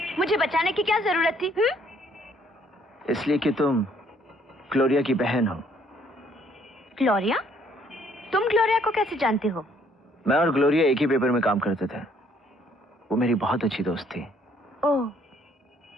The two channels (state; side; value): normal; both; correlation 0.64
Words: मुझे बचाने की क्या जरूरत थी? इसलिए कि तुम ग्लोरिया की बहन हो। ग्लोरिया? तुम ग्लोरिया को कैसे जानते हो? मैं और ग्लोरिया एक ही पेपर में काम करते थे। वो मेरी बहुत अच्छी दोस्त थी। ओह,